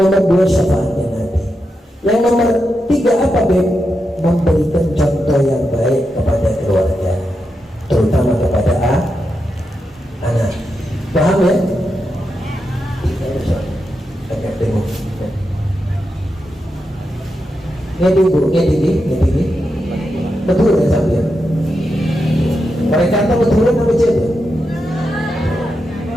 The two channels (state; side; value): normal; both; correlation 0.87